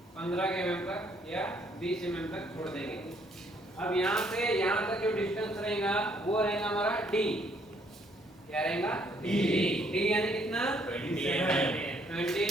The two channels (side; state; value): both; normal; correlation 0.67